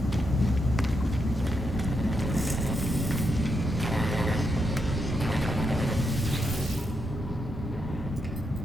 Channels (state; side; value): normal; both; correlation 0.82